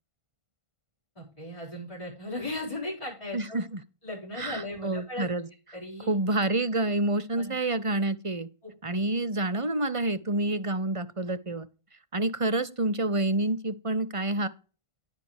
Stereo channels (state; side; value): late; left; 1.5 ms